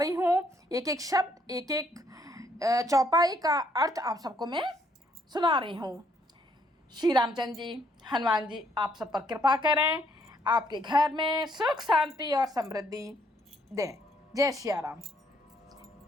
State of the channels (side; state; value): both; normal; correlation 0.69